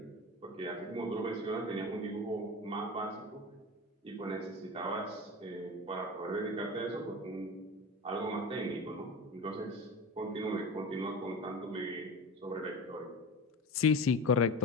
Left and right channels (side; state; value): both; normal; correlation 0.29